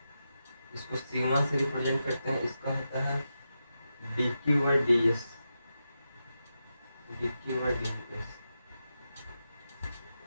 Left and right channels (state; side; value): inverted; both; correlation -0.89